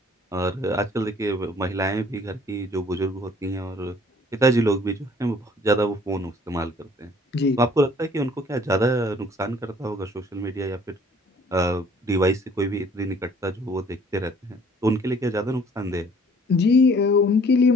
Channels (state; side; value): normal; both; correlation 0.56